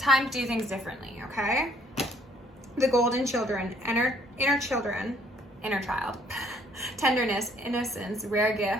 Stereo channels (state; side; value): normal; both; correlation 0.64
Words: to do things differently, okay? The Golden Children, inner child. Tenderness, innocence, rare